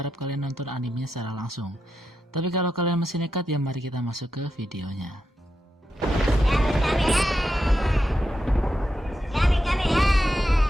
kalian nonton animenya secara langsung. Tapi kalau kalian masih nekat, ya mari kita masuk ke videonya.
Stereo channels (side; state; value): both; normal; correlation 0.86